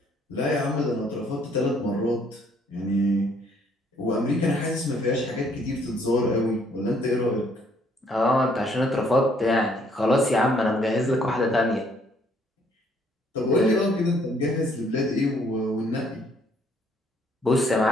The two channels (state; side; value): normal; both; correlation 0.65